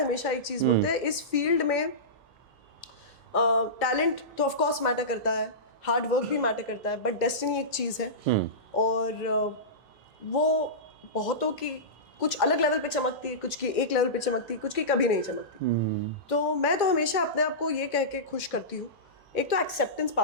एक चीज़ बोलते हैं, इस फील्ड में टैलेंट तो ऑफ कोर्स मैटर करता है, हार्ड वर्क भी मैटर करता है, बट डेस्टिनी एक चीज़ है और वो बहुतों की कुछ अलग लेवल पे चमकती है, कुछ की एक लेवल पे चमकती है, कुछ की कभी नहीं चमकती। तो मैं तो हमेशा अपने आप को ये कह के खुश करती हूँ, एक तो एक्सेप्टेंस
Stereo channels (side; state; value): both; normal; correlation -0.19